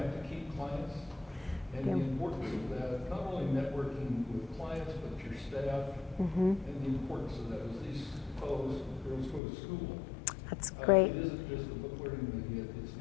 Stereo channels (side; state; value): right; drops out; at 9.4 s